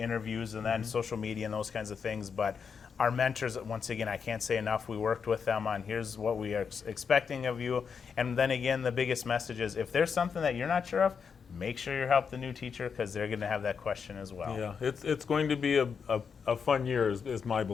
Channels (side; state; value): right; quieter; 6.2 dB